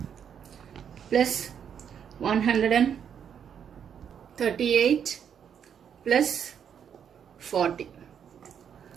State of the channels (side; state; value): left; quieter; 8.1 dB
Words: plus 138 plus 40.